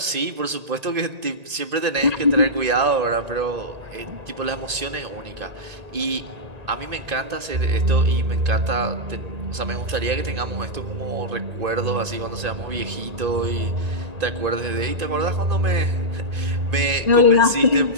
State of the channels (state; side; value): late; left; 1.8 ms